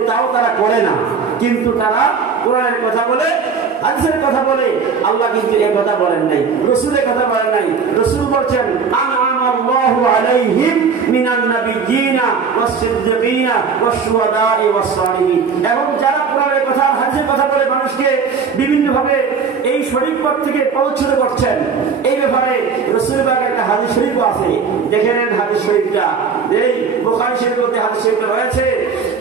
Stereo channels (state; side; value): quieter; left; 5.7 dB